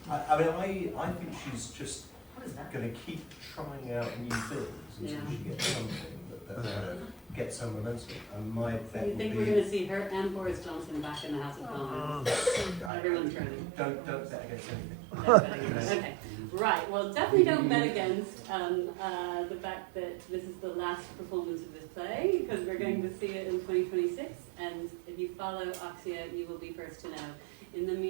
I think she's just going to keep trying out new things until she gets something that gets some momentum. And my bet So you think would we're be, going to see her and Boris Johnson back in the House of Commons? Everyone's turning. don't bet against anything. Okay, right. Well, definitely don't bet against the fact that this is the last performance of this play, because we're going to see it in 2026. And if you follow Oxia, you will be first to know. In the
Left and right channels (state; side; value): drops out; left; at 12.9 s